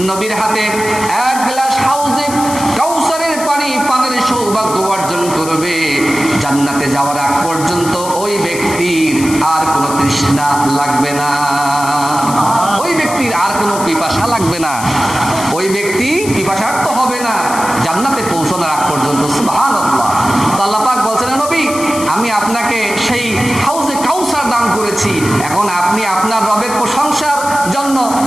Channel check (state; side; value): noise; left; hiss, 10 dB below the sound